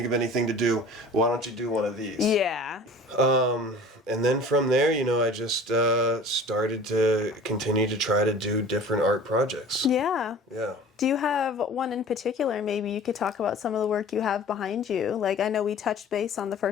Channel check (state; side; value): normal; both; correlation 0.43